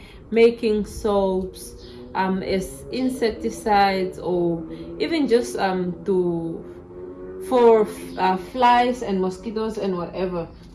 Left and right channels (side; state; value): both; identical; correlation 1.00